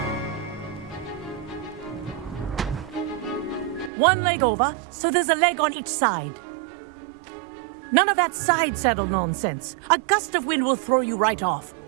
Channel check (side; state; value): left; drops out; at 3.9 s